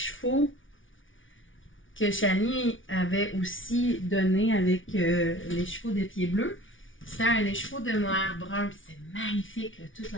que Shani avait aussi donné avec les chevaux de Pieds Bleus, c'était un écheveau de noir brun, puis c'est magnifique, là, toute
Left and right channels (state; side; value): late; right; 0.57 ms